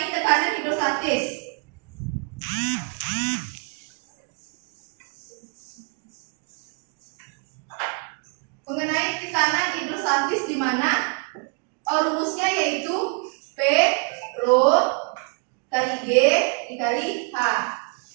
tekanan hidrostatis. Mengenai tekanan hidrostatis di mana rumusnya yaitu P rho kali G dikali H.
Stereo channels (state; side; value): quieter; left; 39.1 dB